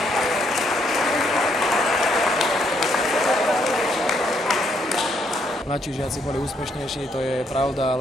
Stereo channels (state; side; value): normal; both; correlation 0.73